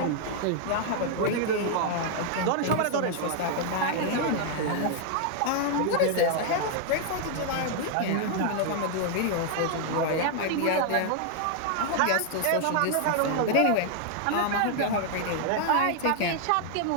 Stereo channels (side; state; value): both; different; correlation 0.00